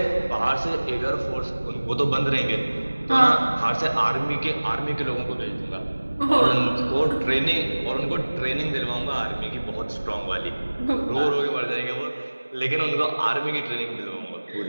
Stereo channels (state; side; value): inverted; both; correlation -1.00